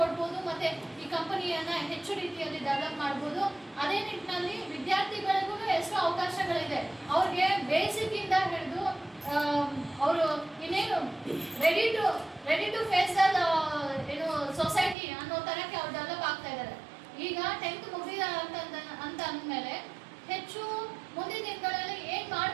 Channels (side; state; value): left; drops out; at 15.0 s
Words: ಕೊಡ್ಬೋದು, ಮತ್ತೆ ಈ ಕಂಪನಿಯನ್ನ ಹೆಚ್ಚು ರೀತಿಯಲ್ಲಿ ಡೆವಲಪ್ ಮಾಡ್ಬೋದು. ಅದೇ ನಿಟ್ಟಿನಲ್ಲಿ ವಿದ್ಯಾರ್ಥಿಗಳಿಗೂ ಎಷ್ಟೋ ಅವಕಾಶಗಳಿದೆ. ಅವ್ರಿಗೆ ಬೇಸಿಕ್ ಇಂದ ಹಿಡಿದು ಅವರು ಇನ್ನೇನು ರೆಡಿ ಟು ಫೇಸ್ ಏನು ಸೊಸೈಟಿ ಅನ್ನೋ ತರಕ್ಕೆ ಅವ್ರು ಡೆವಲಪ್ ಆಗ್ತಾ ಇದ್ದಾರೆ. ಈಗ 10th ಮುಗಿದ ಅಂತ ಅಂದ್ಮೇಲೆ ಹೆಚ್ಚು ಮುಂದಿನ ದಿನಗಳಲ್ಲಿ ಏನ್